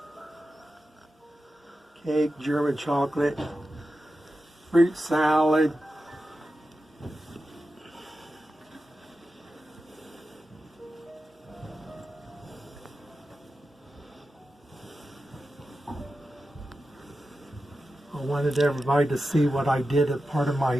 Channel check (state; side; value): normal; both; correlation 0.92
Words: cake, German chocolate, fruit salad. I wanted everybody to see what I did at part of